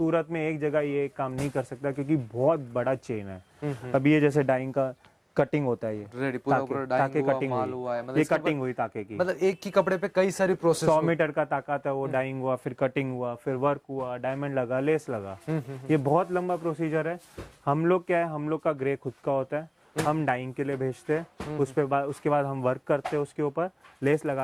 में एक जगह ये काम नहीं कर सकता क्योंकि बहुत बड़ा चेन है। अब ये जैसे डाइंग का कटिंग होता है, ये रेडी पूरा पूरा ताके डाइंग कटिंग हुआ, माल हुई, हुआ है, मतलब ये इसके कटिंग हुई ताके की। मतलब एक ही कपड़े पे कई सारी प्रोसेस 100 मीटर का ताकत है, वो डाइंग हुआ, फिर कटिंग हुआ, फिर वर्क हुआ, डायमंड लगा, लेस लगा। ये बहुत लंबा प्रोसीजर है। हम लोग क्या है, हम लोग का ग्रे खुद का होता है, हम डाइंग के लिए भेजते हैं, उसके बाद हम वर्क करते हैं, उसके ऊपर लेस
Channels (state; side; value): identical; both; correlation 1.00